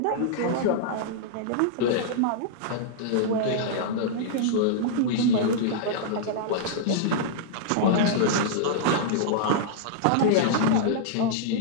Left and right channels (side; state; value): both; different; correlation -0.02